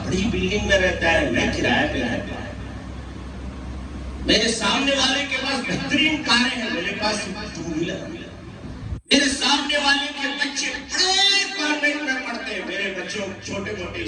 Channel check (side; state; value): both; identical; correlation 1.00